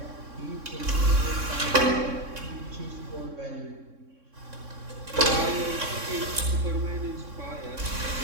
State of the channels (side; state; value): left; late; 3.6 ms